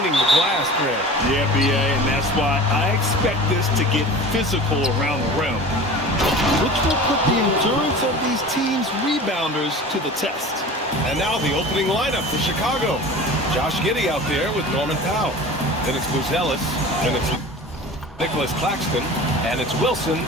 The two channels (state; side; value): normal; both; correlation 0.37